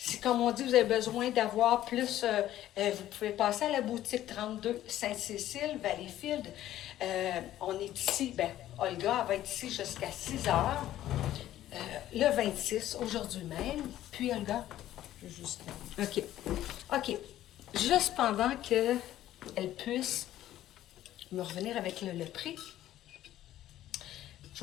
comme on dit, vous avez besoin d'avoir plus, vous pouvez passer à la boutique 32 Sainte-Cécile, Valleyfield. On est ici, Olga elle va être ici jusqu'à 6 heures, le 26, aujourd'hui même. Puis, Olga? Jusqu'à. OK. Juste pendant qu'elle puisse me revenir avec le prix, je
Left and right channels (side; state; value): right; quieter; 13.2 dB